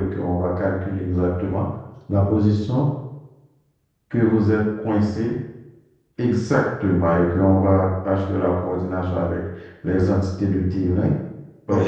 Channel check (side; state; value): both; identical; correlation 1.00